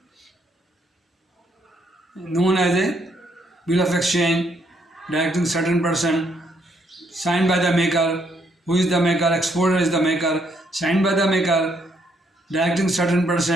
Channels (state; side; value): normal; both; correlation 0.72